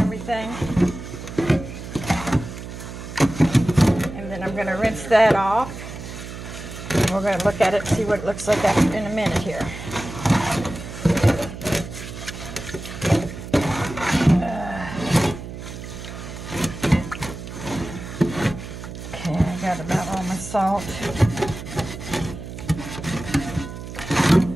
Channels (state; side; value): noise; right; hum, 10 dB below the sound